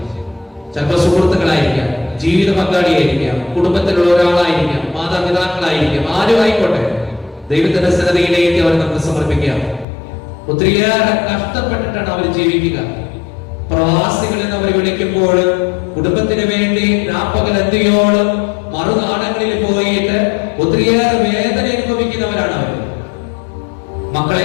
ചിലപ്പോൾ സുഹൃത്തുക്കളായിരിക്കാം, ജീവിത പങ്കാളിയായിരിക്കാം, കുടുംബത്തിലുള്ള ഒരാളായിരിക്കാം, മാതാപിതാക്കളായിരിക്കാം, ആരും ആയിക്കോട്ടെ, ദൈവത്തിന്റെ സന്നദ്ധയിലേക്ക് അവർ നമുക്ക് സമർപ്പിക്കാം. ഒത്തിരിയേറെ കഷ്ടപ്പെട്ടിട്ടാണ് അവർ ജീവിക്കുക. പ്രവാസികൾ എന്ന് അവർ വിളിക്കുമ്പോൾ കുടുംബത്തിന് വേണ്ടി രാപ്പകൽ എന്തിയോളം മറുനാടങ്ങളിൽ പോയിട്ട് ഒത്തിരിയേറെ വേദന അനുഭവിക്കുന്നവരാണ് അവർ.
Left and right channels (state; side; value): drops out; right; at 9.9 s